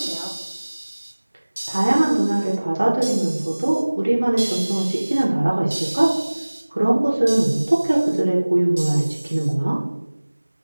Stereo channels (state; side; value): inverted; both; correlation -1.00